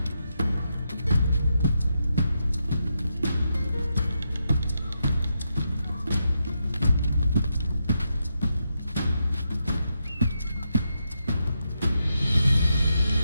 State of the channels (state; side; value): inverted; both; correlation -0.84